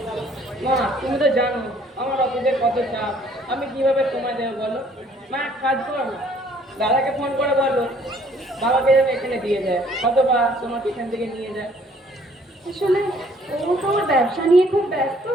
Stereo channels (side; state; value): both; normal; correlation 0.60